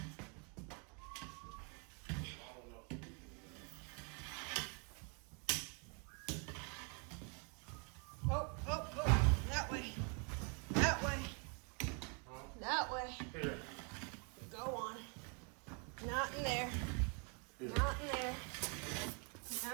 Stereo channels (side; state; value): left; quieter; 36.8 dB